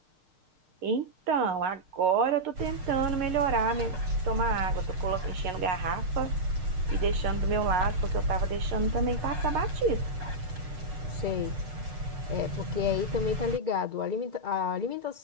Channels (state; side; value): late; left; 6.6 ms